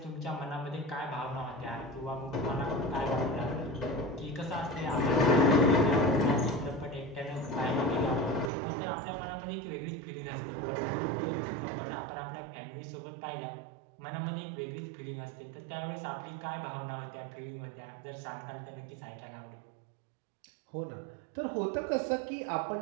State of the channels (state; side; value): drops out; left; at 8.5 s